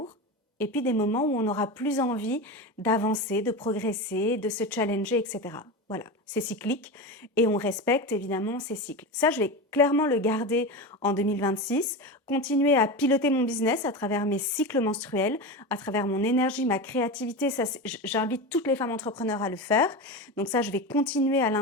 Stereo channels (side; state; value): both; normal; correlation 0.22